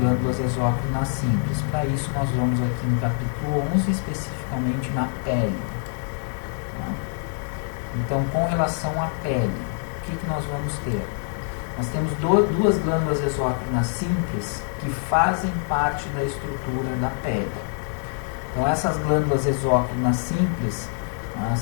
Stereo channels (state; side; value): silent; right; 58 dB below the other